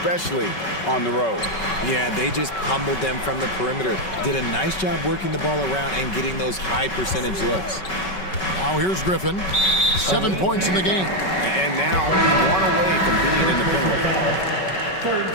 on the road. Yeah, they just pummeled them from the perimeter. Did a nice job working the ball around and getting those high percentage looks. Now here's Griffin. 7 points in the game. And now only 1 away from being in the penalty. Third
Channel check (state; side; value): late; right; 5.3 ms